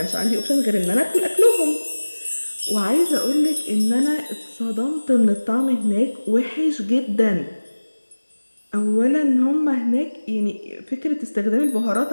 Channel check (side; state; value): both; inverted; correlation -1.00